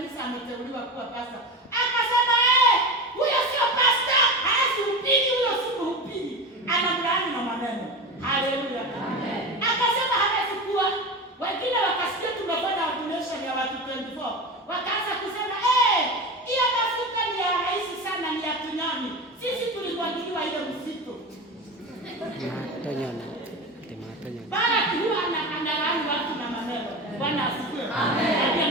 ameteuliwa kuwa pastor. Akasema huyo sio pastor, hahubiri, huyo si mhubiri. Anamlaani na maneno. Haleluya. Amen. Akasema hawezi kuwa. Wengine wakasikia tumefanya ordination ya watu 24. Wakaanza kusema hiyo mafuta ni ya rahisi sana, ni ya tunyoni. Sisi tulimwagiliwa ile msitu. Tunyoni. Barak huwa analaani watu na maneno. Bwana asifiwe. Amen.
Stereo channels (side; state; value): both; normal; correlation 0.25